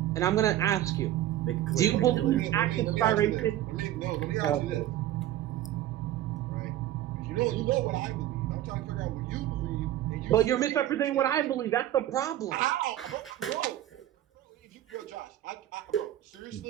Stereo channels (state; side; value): quieter; left; 13.1 dB